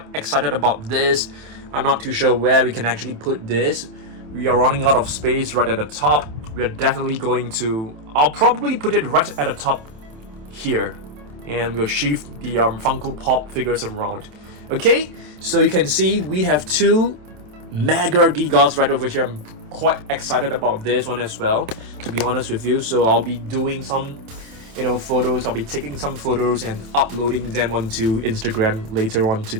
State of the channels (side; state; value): left; late; 27 ms